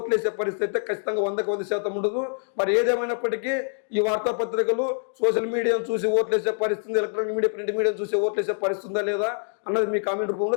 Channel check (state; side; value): silent; right; digital silence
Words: వేసే పరిస్థితి అయితే ఖచ్చితంగా 100% ఉండదు. మరి ఏదేమైనప్పటికీ ఈ వార్తాపత్రికలు సోషల్ మీడియాను చూసి ఓట్లు వేసే పరిస్థితి, ఎలక్ట్రానిక్ మీడియా, ప్రింట్ మీడియాను చూసి ఓట్లు వేసే పరిస్థితి ఉందా లేదా అన్నది మీ కామెంట్